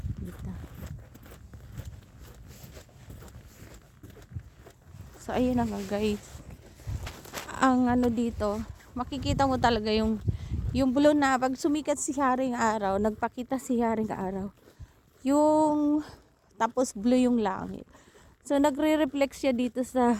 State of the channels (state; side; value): identical; both; correlation 1.00